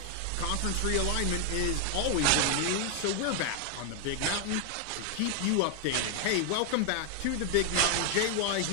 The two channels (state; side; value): different; both; correlation 0.00